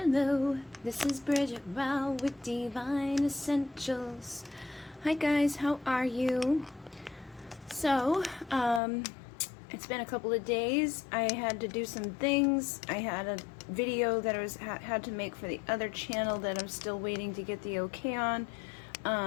Hello, this is Bridget Rao with Divine Essentials. Hi guys, how are you? So, it's been a couple of days. I had to do some things. I had a video that I had to make for the other channel that I'm still waiting to get the okay on.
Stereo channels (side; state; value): right; drops out; at 8.8 s